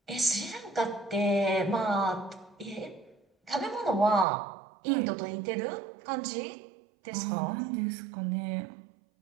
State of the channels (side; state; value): left; drops out; at 4.2 s